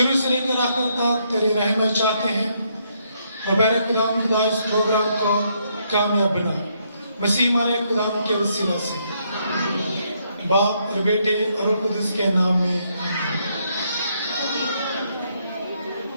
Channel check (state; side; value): inverted; both; correlation -0.74